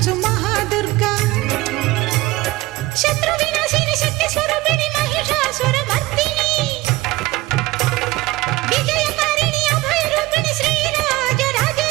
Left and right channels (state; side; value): quieter; left; 19.2 dB